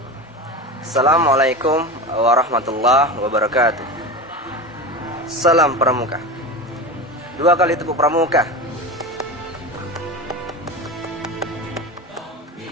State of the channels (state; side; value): normal; both; correlation 0.26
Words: Assalamualaikum warahmatullahi wabarakatuh. Salam Pramuka. Dua kali tepuk Pramuka.